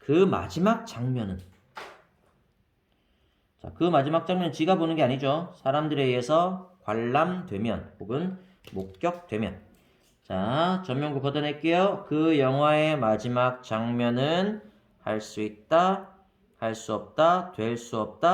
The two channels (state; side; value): identical; both; correlation 1.00